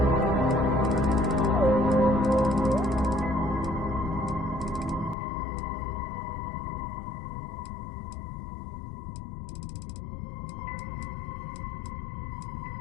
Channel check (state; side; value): drops out; right; at 5.2 s